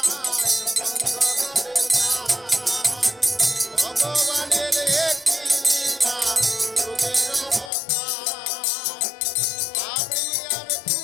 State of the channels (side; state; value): right; drops out; at 7.7 s